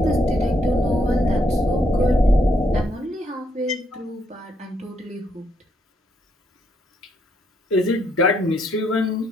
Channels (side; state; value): both; normal; correlation 0.75